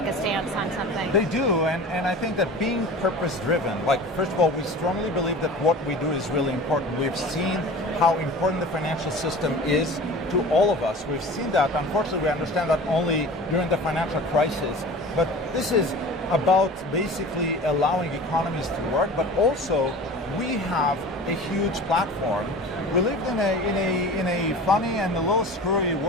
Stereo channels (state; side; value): normal; both; correlation 0.38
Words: a stance on something. They do, and I think that being purpose-driven, like, first of all, we strongly believe that what we do is really important. We've seen how important the financial system is to all of us. We've seen that. Unfortunately, we understand that only during the financial crisis. But this is about basically allowing economies to work, but also we have a huge platform. We live in a funny and a little screwy